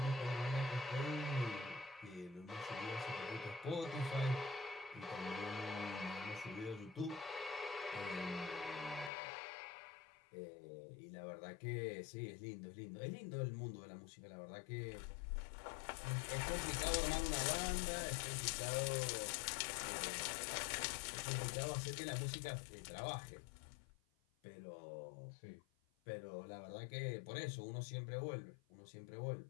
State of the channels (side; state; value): right; drops out; at 9.1 s